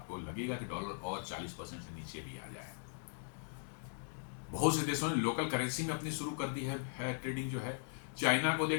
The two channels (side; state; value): right; silent; digital silence